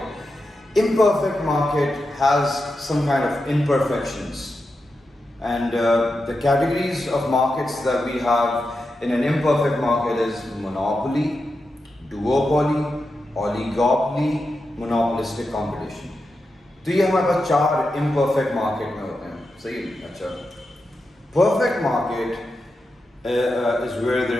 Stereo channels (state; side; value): normal; both; correlation 0.89